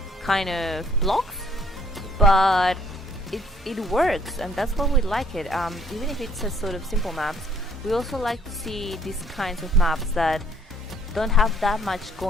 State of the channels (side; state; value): both; normal; correlation 0.63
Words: kind of blocks, but it works, and that's why we like it. Even if it's a sort of simple maps, we also like to see these kinds of maps that don't have that much